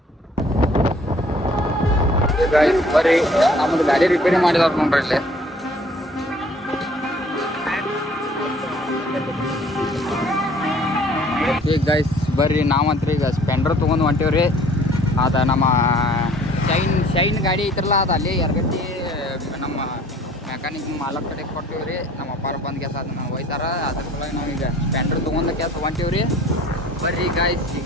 ಬರ್ರಿ ನಮ್ಮದು ಗಾಡಿ ರಿಪೇರಿ ಮಾಡಿದವ್ರು ನೋಡ್ರಿ ಇಲ್ಲಿ. ಈಗ ಗೈಸ್ ಬರ್ರಿ ನಾವಂತ್ರಿ ಈಗ ಸ್ಪ್ಲೆಂಡರ್ ತೊಗೊಂಡು ಹೊಂಟೀವ್ರಿ. ಅದು ನಮ್ಮ ಶೈನ್ ಗಾಡಿ ಐತ್ರಲ್ಲ, ಅದು ಅಲ್ಲಿ ಯರಗಟ್ಟಿ ನಮ್ಮ ಮೆಕ್ಯಾನಿಕ್ ಮಾಲಕ್ ಕಡೆ ಕೊಟ್ಟಿವ್ರಿ. ನಮ್ಮ ಅಪ್ಪಾರ ಬಂದು ಕೆಲಸ ಅದನ್ನ ಒಯ್ತಾರ. ಅದ್ರ ಸಲುವಾಗಿ ನಾವೀಗ ಸ್ಪ್ಲೆಂಡರ್ ತೊಗೊಂಡು ಕೆಲಸ ಹೊಂಟೀವ್ರಿ. ಬರ್ರಿ ಗಾಯ್ಸ್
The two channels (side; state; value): both; normal; correlation 0.54